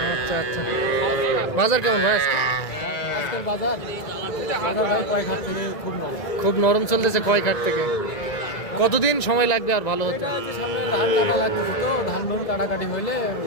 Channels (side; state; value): right; late; 1.9 ms